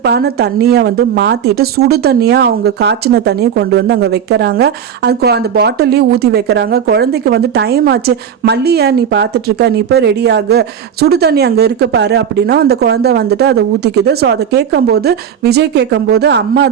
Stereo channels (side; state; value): left; quieter; 8.3 dB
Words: தண்ணியை மாத்திட்டு சுடு தண்ணியா அவங்க காய்ச்சின தண்ணியை கொண்டு அங்க வைக்கிறாங்க. அது அந்த பாட்டிலையும் ஊத்தி வைக்கிறாங்க. குழந்தைக்கு டைம் ஆச்சு, மல்லியா நீ பார்த்துட்டு இருக்க, நீ போய் ரெடி ஆகு, சுடு தண்ணி அங்கே இருக்கு பாரு அப்படின்னா அந்த குழந்தை அதை ஊற்றிக்குது. ஸோ அதை கேட்கும்போது விஜய் கேட்கும்போது அம்மா